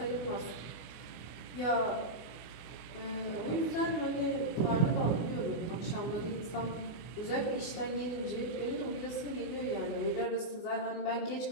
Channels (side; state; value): right; late; 24 ms